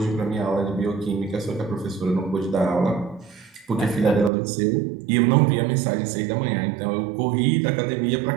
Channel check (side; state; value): left; drops out; at 4.3 s